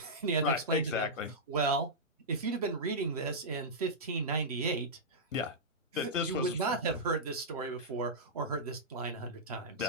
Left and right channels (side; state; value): both; normal; correlation -0.11